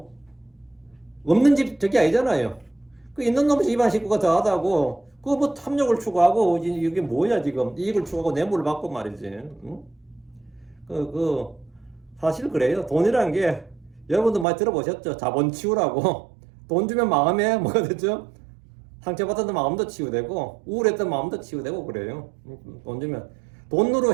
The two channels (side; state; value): left; drops out; at 14.5 s